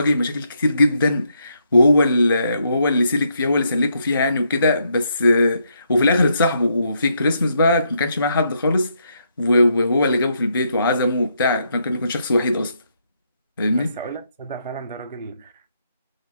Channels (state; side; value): inverted; both; correlation -0.77